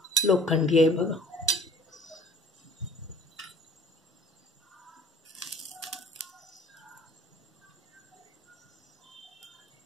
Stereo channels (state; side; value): normal; both; correlation 0.49